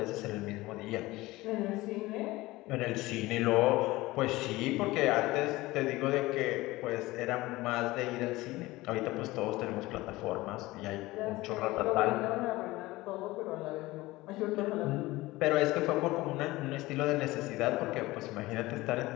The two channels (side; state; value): right; quieter; 19.3 dB